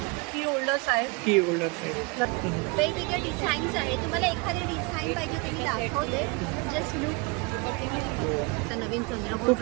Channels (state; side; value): quieter; left; 29.2 dB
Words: की होल्डर्स आहेत. की होल्डर्स आहेत. वेगवेगळे डिझाईन्स आहे. तुम्हाला एखादी डिझाईन पाहिजे तर मी दाखवते. Just look. नवीन चंद्रकोर